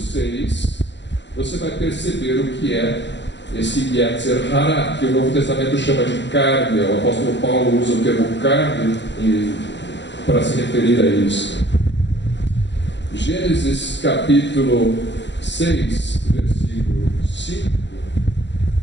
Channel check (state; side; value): late; right; 0.52 ms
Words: você vai perceber o que é esse Yetzer Hara, que o Novo Testamento chama de carne. O apóstolo Paulo usa o termo carne para se referir a isso. Gênesis capítulo 6, versículo 5.